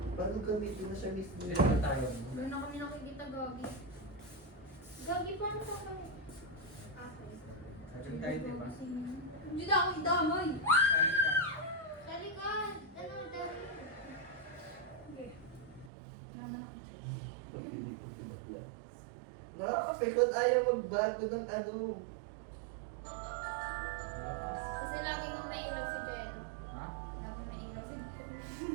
Paano gamitin na siya mismo? Dito na tayo. Doon na kami nakikita, Gagi. Gagi, paano ka kami? Sabi tayo, di ba? Hindi na ako idamay. Sabi ka. Dali ka. Ano, dali. Okay. Nakakapikon, ayaw magbago ng ano. Kasi lagi nung nailaw si Jello. Ha? Lagi nailaw si Jello.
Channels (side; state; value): left; drops out; at 15.9 s